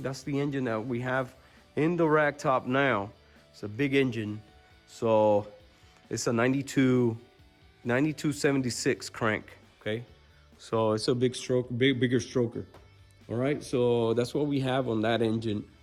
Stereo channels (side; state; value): both; identical; correlation 1.00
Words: that's the engine that we have in the rack top now. It's a big engine. So, it's a 9276 crank, okay? So, it's a bigger stroker. All right, so that's what we have on that engine,